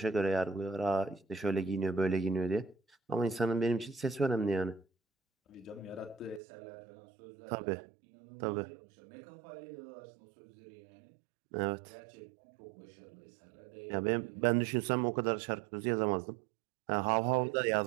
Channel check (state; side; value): drops out; left; at 6.4 s